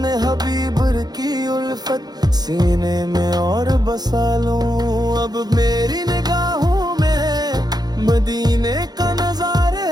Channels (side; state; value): left; late; 0.19 ms